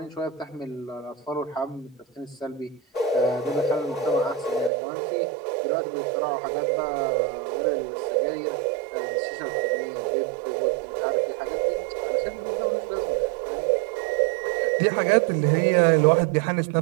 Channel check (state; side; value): drops out; left; at 4.7 s